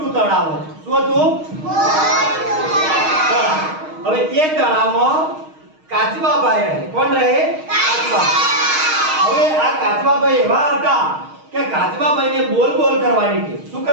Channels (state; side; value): late; left; 6.4 ms